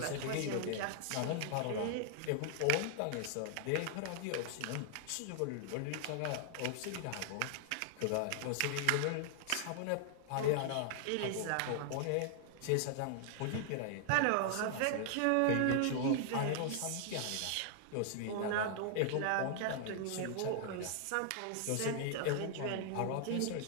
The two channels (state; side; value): different; both; correlation 0.00